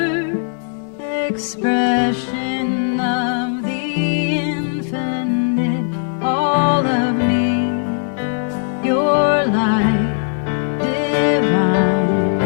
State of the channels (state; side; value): silent; right; digital silence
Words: expression of the infinite. All of me, your light divine.